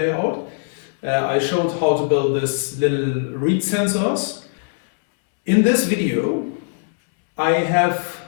I showed how to build this little reed sensors. In this video I have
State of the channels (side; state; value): right; silent; 66 dB below the other